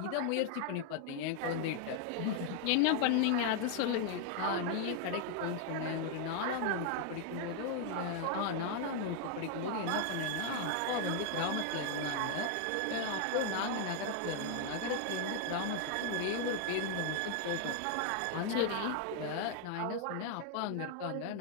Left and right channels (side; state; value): both; different; correlation 0.00